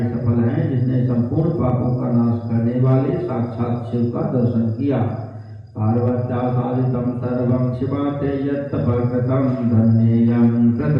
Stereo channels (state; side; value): identical; both; correlation 1.00